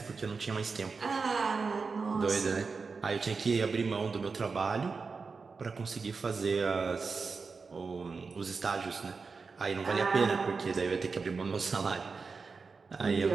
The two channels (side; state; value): left; quieter; 4.7 dB